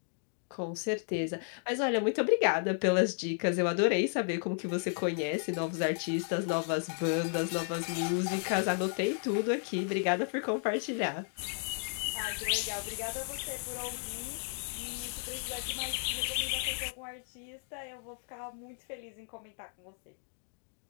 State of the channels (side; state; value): right; silent; 55 dB below the other